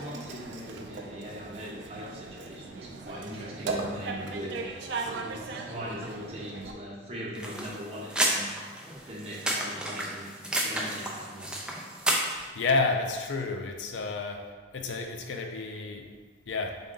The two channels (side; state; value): both; normal; correlation 0.00